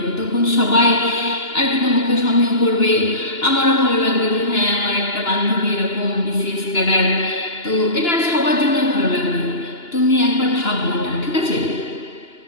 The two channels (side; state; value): right; late; 2.9 ms